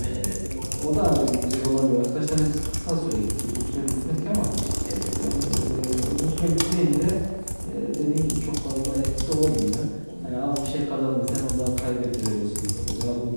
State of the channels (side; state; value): both; inverted; correlation -1.00